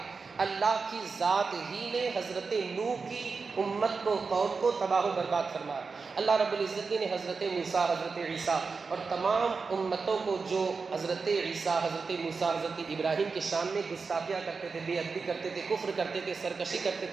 اللہ کی ذات ہی نے حضرت نوح کی امت کو، قوم کو تباہ و برباد فرمایا۔ اللہ رب العزت نے حضرت موسیٰ، حضرت عیسیٰ اور تمام امتوں کو جو حضرت عیسیٰ، حضرت موسیٰ، حضرت ابراہیم کے شان میں گستاخیاں کرتے تھے، بے ادبی کرتے تھے، کفر کرتے تھے، سرکشی کرتے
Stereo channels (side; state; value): left; quieter; 4.7 dB